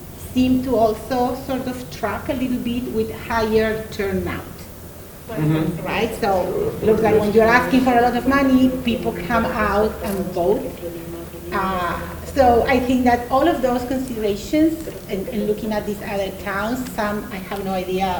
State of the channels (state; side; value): identical; both; correlation 1.00